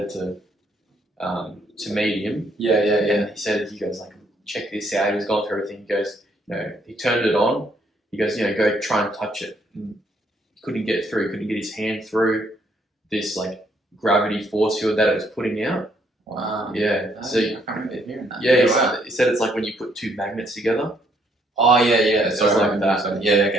to meet him. Yeah. And he goes like, check this out. He was going through everything. He goes, he turned it on. He goes, go try and touch it. And he couldn't get through. He couldn't get his hand through this like gravity force field that it was putting out. Wow. Yeah. So I can't remember hearing that. Yeah, he said it's like when you put two magnets together. Oh yeah. So it's like that. Yeah.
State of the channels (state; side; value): normal; both; correlation 0.69